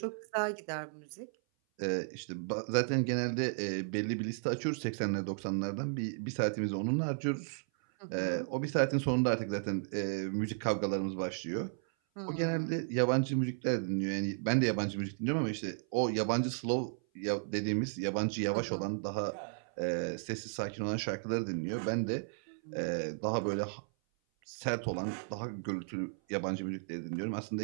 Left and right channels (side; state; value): left; silent; 55 dB below the other